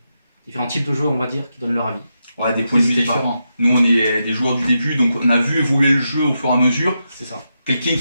types de joueurs, on va dire, qui donnent leur avis. Ouais, des points de vue différents. Nous, on est des joueurs du début, donc on a vu évoluer le jeu au fur et à mesure. C'est ça. Quelqu'un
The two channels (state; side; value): inverted; both; correlation -0.86